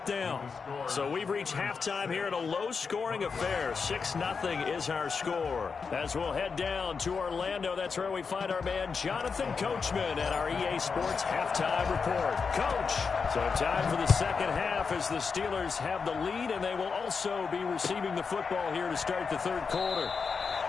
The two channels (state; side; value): quieter; right; 5.3 dB